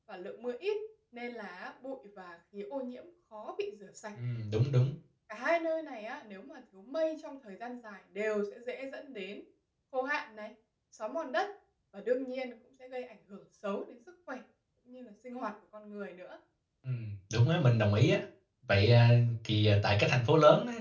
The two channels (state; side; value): identical; both; correlation 1.00